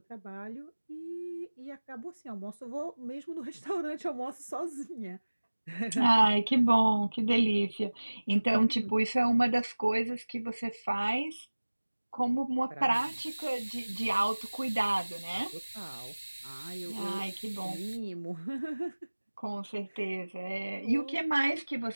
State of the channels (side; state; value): both; inverted; correlation -1.00